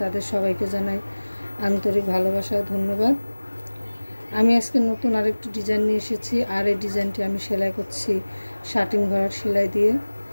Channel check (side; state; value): both; inverted; correlation -1.00